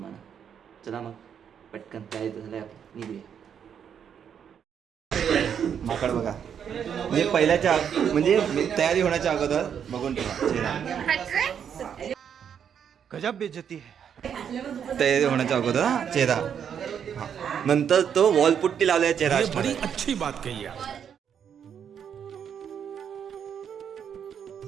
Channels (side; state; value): left; quieter; 8.1 dB